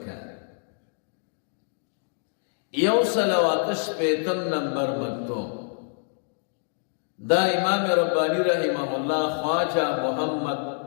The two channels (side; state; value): right; silent; digital silence